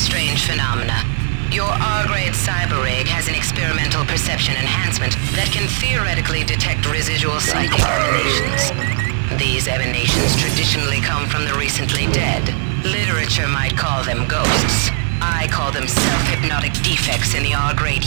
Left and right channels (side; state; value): left; silent; digital silence